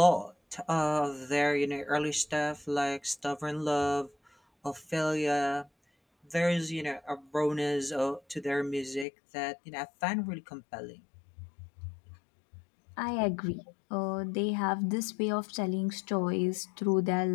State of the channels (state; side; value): drops out; right; at 9.1 s